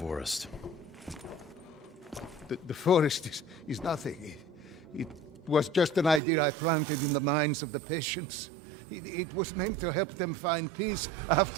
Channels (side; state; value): left; drops out; at 6.2 s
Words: The forest is nothing. It was just an idea I planted in the minds of the patients. It was meant to help them find peace